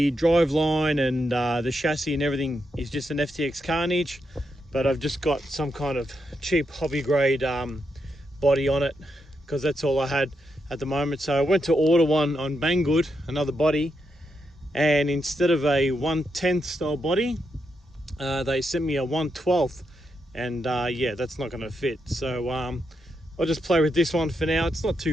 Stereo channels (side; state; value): both; normal; correlation 0.83